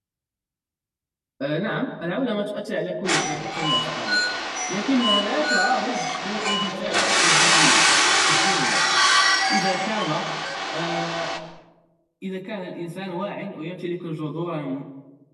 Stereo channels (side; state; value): both; identical; correlation 1.00